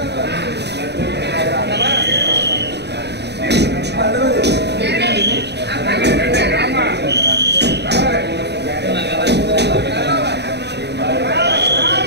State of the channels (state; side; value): late; left; 0.49 ms